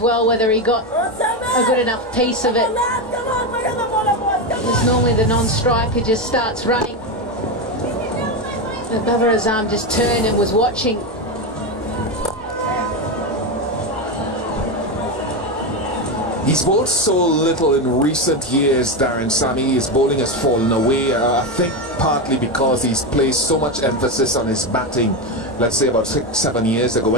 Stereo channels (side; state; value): both; normal; correlation 0.13